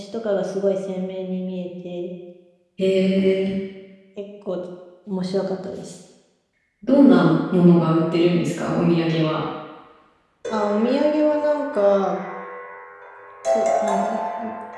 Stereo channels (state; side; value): identical; both; correlation 1.00